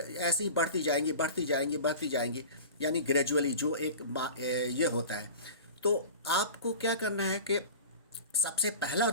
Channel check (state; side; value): inverted; both; correlation -0.36